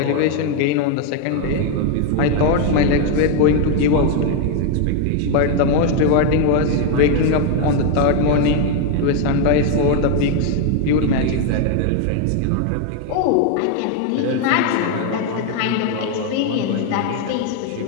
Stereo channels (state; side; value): different; both; correlation 0.01